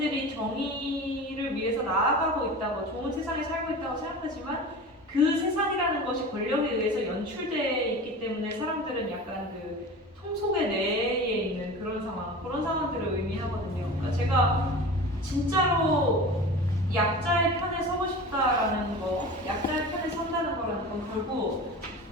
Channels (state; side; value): normal; both; correlation 0.34